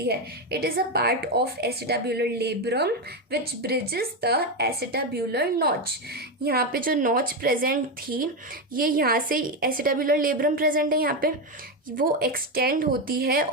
है। It is a part of acetabular labrum which bridges the acetabular notch. यहाँ पे जो नॉच प्रेजेंट थी, ये यहाँ से एसिटाब्यूलर लेब्रम प्रेजेंट है, यहाँ पे वो एक्सटेंड होती है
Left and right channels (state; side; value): normal; both; correlation 0.10